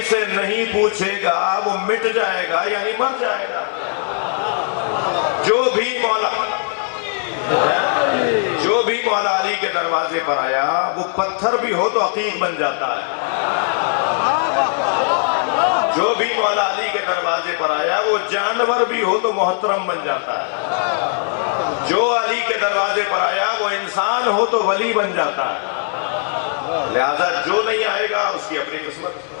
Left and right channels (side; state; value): right; silent; 66 dB below the other